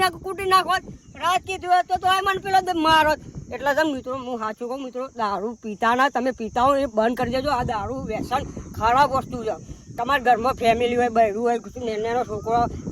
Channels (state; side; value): identical; both; correlation 1.00